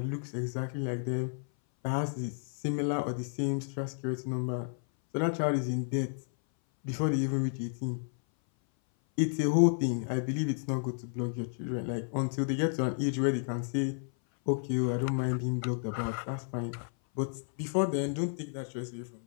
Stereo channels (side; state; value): right; silent; 56 dB below the other